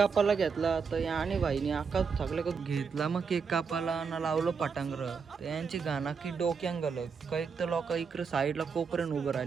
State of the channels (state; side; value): quieter; left; 5.7 dB